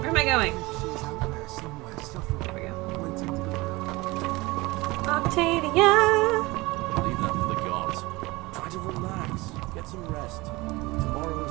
Where am I going? There we go. Octavia! Leave that for the gods. Try to relax. Get some rest.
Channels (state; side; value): quieter; left; 22.1 dB